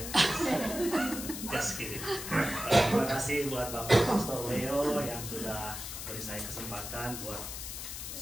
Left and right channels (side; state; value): left; noise; hiss, 7 dB below the sound